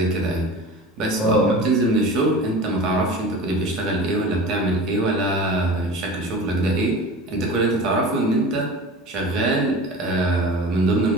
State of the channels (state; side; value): normal; both; correlation 0.35